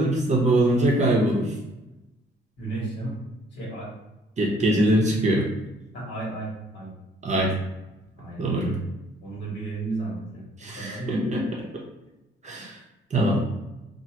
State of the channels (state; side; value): normal; both; correlation 0.62